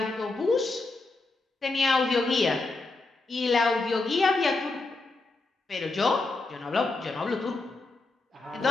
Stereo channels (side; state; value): right; quieter; 3.4 dB